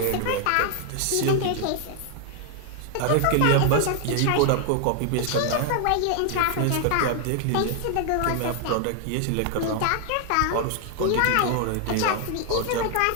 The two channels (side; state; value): both; different; correlation 0.00